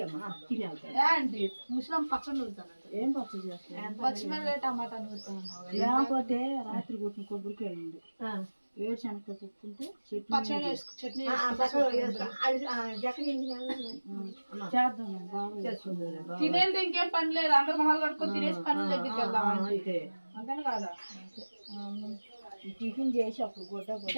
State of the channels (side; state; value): both; inverted; correlation -1.00